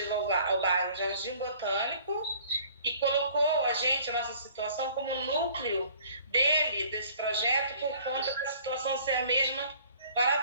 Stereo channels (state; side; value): inverted; both; correlation -0.54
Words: ao bairro Jardim Botânico e colocou a nossa situação como núcleo desse projeto por conta da situação ser a mesma para